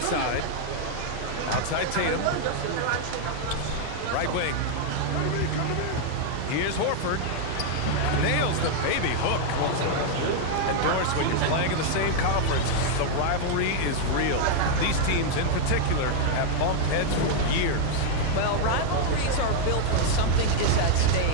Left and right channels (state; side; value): different; both; correlation 0.00